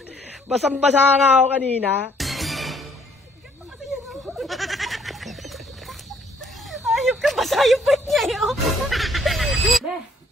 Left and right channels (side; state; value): both; normal; correlation 0.64